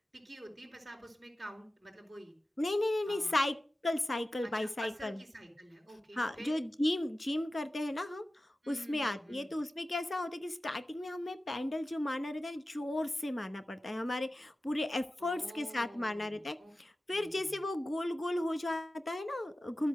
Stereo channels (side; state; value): both; normal; correlation 0.95